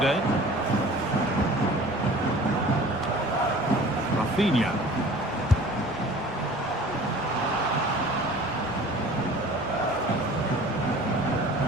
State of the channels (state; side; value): noise; right; rumble, 22 dB below the sound